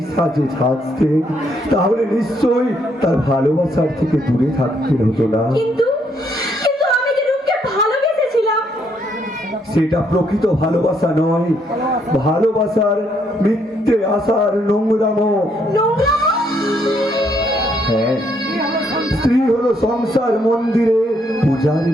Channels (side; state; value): both; normal; correlation 0.72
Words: সাজে সাজতেন, তাহলে নিশ্চয়ই তার ভালোবাসার থেকে দূরে থাকতে হতো না। কিন্তু কিন্তু আমি যে রূপকে ভালোবেসেছিলাম। সেটা প্রকৃত ভালোবাসা নয়, ভালোবাসার মিথ্যে আশার নোংরামো। হ্যাঁ, স্ত্রী হলো সংসার মন্দিরের